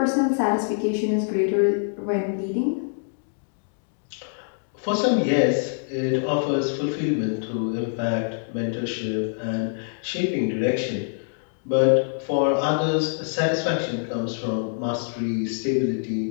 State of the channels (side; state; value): right; silent; digital silence